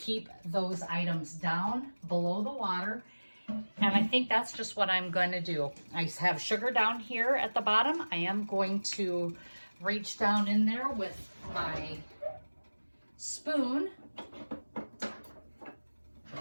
those items down below the water. And I think that's just what I'm going to do. I have sugar down here at the bottom. I am going to reach down in there with my spoon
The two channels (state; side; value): inverted; both; correlation -1.00